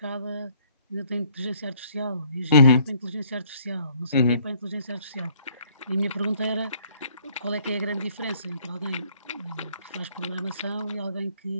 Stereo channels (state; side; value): inverted; both; correlation -0.63